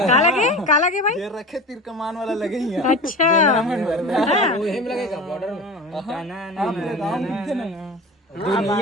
का लगे भाई जेहर रखे तीर कमान वाला लगे ही अच्छा हेम लगेगा बॉर्डर में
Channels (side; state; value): both; normal; correlation 0.32